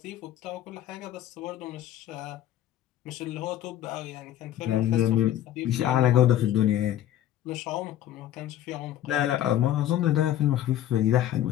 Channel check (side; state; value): right; quieter; 12.1 dB